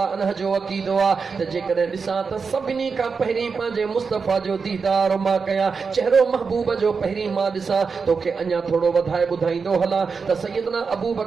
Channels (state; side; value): quieter; left; 5.2 dB